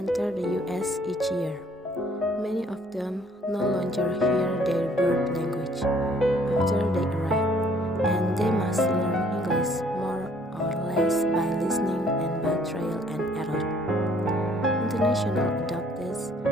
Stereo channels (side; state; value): both; normal; correlation 0.61